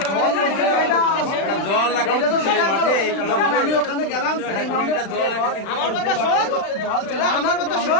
জল লাগাই এটা তো মাঠে আমি ওখানে গেলাম সেকেন্ড রাউন্ডে আমার কথা শোন জল আমার কথা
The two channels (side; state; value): right; late; 36 ms